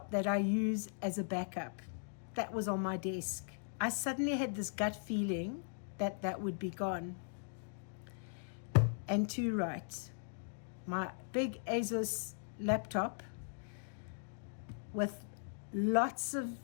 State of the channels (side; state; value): right; silent; digital silence